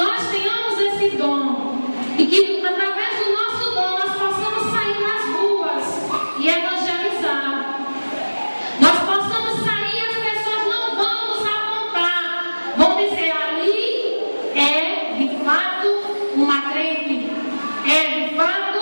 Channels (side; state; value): both; inverted; correlation -1.00